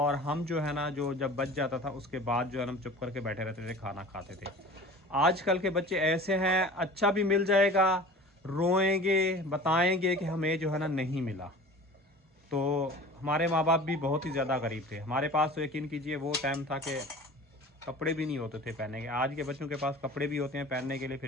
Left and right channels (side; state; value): both; normal; correlation 0.40